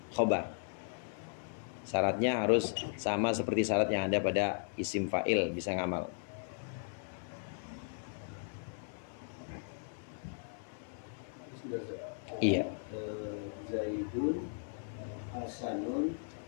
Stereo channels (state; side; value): silent; right; 53 dB below the other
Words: khobar. Syaratnya harus sama seperti syarat yang ada pada isim fa'il, bisa ngamal. Iya. Zaidun hasanun